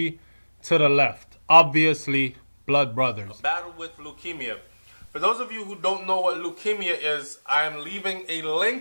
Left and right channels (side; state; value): both; inverted; correlation -1.00